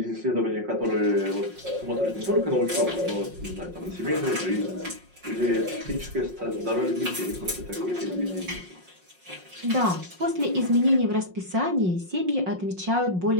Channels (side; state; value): left; late; 5.5 ms